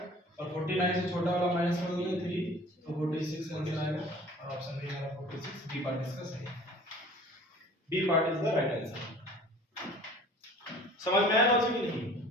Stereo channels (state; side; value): normal; both; correlation 0.47